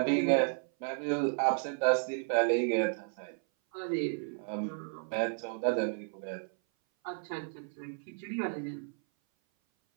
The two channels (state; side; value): silent; left; 56 dB below the other